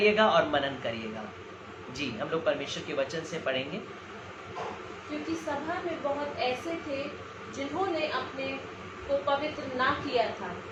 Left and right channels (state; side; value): identical; both; correlation 1.00